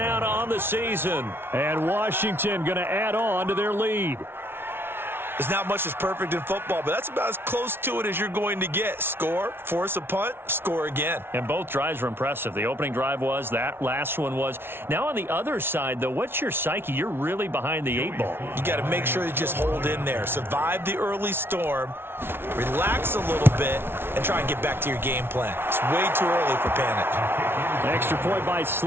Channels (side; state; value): left; late; 0.11 ms